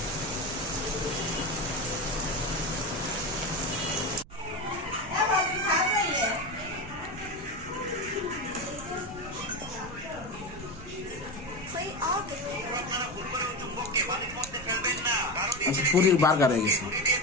আচ্ছা, পুরীর বার্গার হয়ে গেছে।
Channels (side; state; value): right; noise; rumble, 17 dB below the sound